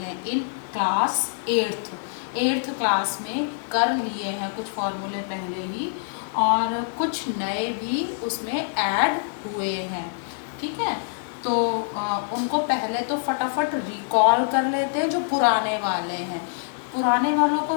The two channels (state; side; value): silent; right; digital silence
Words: इन क्लास एट्थ क्लास में कर लिए हैं कुछ फार्मूले पहले ही, और कुछ नए भी उसमें ऐड हुए हैं। ठीक है, तो उनको पहले तो फटाफट रिकॉल कर लेते हैं। जो पुराने वाले हैं, पुराने वालों